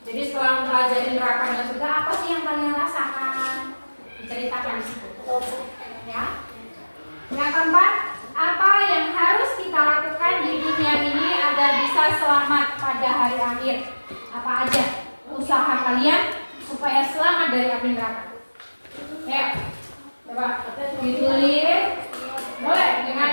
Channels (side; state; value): both; inverted; correlation -1.00